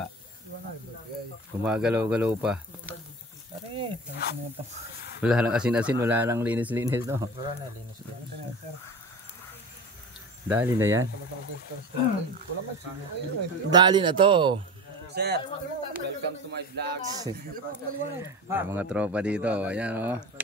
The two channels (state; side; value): normal; both; correlation 0.32